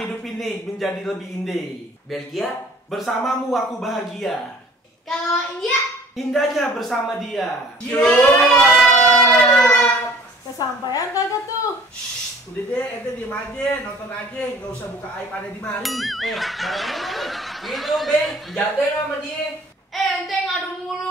ini menjadi lebih indah. Belgia? Bersamamu aku bahagia. Kalau India? Indahnya bersama dia. Kesampaian kagak tuh? Shh, udah deh, ente diem aja, nonton aja, nggak usah buka aib ada di mari. Barangnya Gitu be, jagain sama dia. Ente ngadu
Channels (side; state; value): both; normal; correlation 0.51